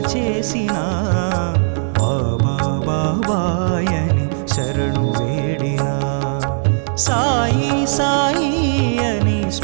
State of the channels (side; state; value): left; silent; digital silence